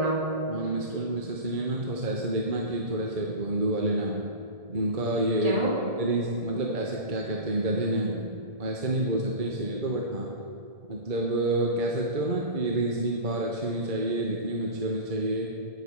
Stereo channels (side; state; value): left; late; 1.7 ms